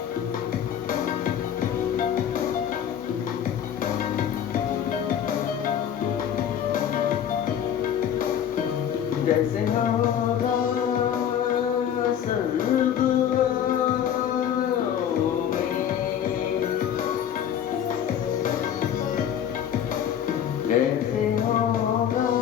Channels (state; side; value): quieter; right; 9.4 dB